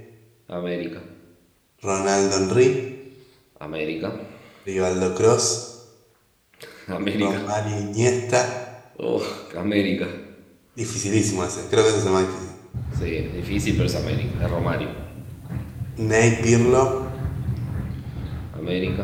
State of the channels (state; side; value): identical; both; correlation 1.00